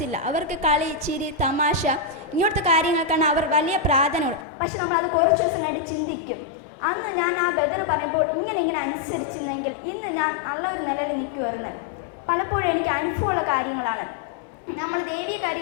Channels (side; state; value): right; drops out; at 4.5 s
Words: അവർക്ക് കളി, ചിരി, തമാശ ഇങ്ങനത്തെ കാര്യങ്ങൾക്കാണ് അവർ വലിയ പ്രാധാന്യമുള്ളത്. പക്ഷെ നമ്മളത് കുറച്ച് ദിവസം കഴിഞ്ഞിട്ട് ചിന്തിക്കും, അന്ന് ഞാൻ ആ ബദർ പറയുമ്പോൾ ഇങ്ങനെ അനുസരിച്ചിരുന്നെങ്കിൽ ഇന്ന് ഞാൻ നല്ലൊരു നിലയിൽ നിൽക്കുമായിരുന്നു. പലപ്പോഴും എനിക്ക് അനുഭവമുള്ള കാര്യങ്ങളാണ്. നമ്മൾ ദൈവീയ